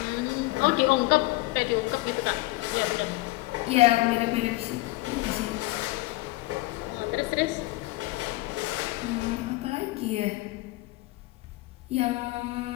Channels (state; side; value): quieter; right; 19.8 dB